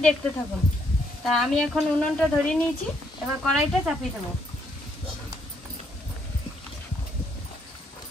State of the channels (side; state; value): both; normal; correlation 0.72